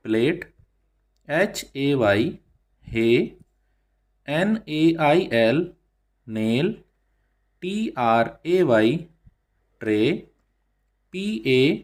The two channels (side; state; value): both; identical; correlation 1.00